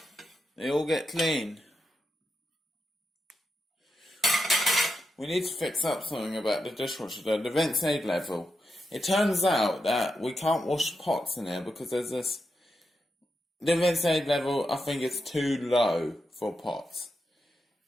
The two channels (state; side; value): normal; both; correlation 0.86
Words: They all get clean. We need to fix up something about the dishwasher though, the vent aid level. It turns out that we can't wash pots in here because there's this... The vent aid level, I think, is too low for pots.